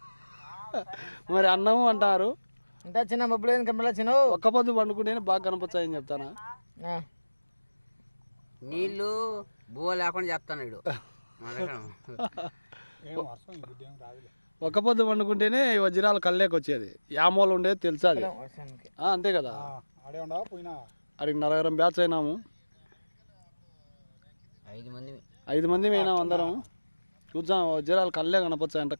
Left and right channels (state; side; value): inverted; both; correlation -1.00